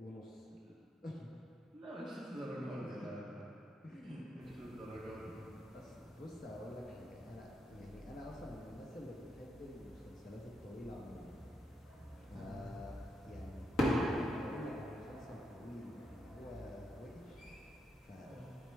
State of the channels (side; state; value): both; normal; correlation 0.81